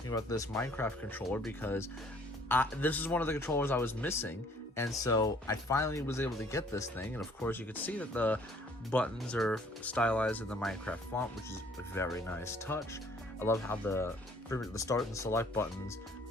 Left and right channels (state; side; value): normal; both; correlation 0.58